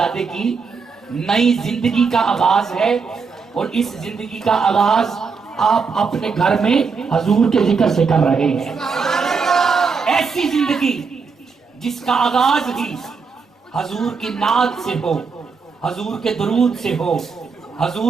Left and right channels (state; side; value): quieter; left; 5.2 dB